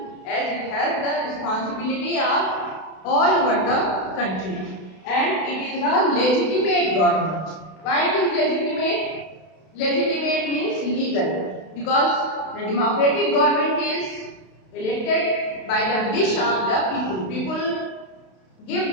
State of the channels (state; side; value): late; right; 32 ms